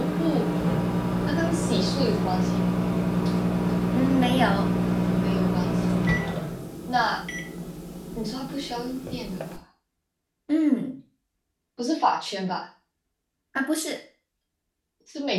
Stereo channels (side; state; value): both; identical; correlation 1.00